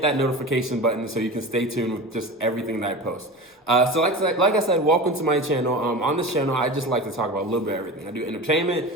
that notification button so you can stay tuned with just everything that I post. So like I said, welcome to my channel. On this channel, I just like to talk about a little bit of everything. I do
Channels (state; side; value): normal; both; correlation 0.31